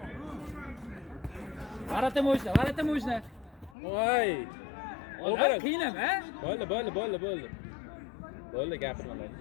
Varata mo'jna. Voy. Olim qiynama. Bo'ldi. Bo'ldi, gapirmalar.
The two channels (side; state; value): right; drops out; at 3.8 s